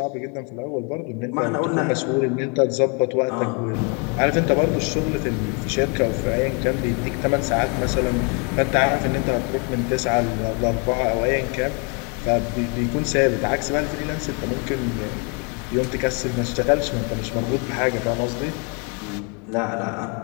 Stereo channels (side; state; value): right; quieter; 34.3 dB